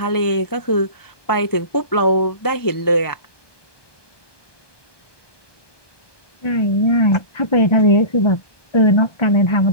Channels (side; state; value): right; late; 1.2 ms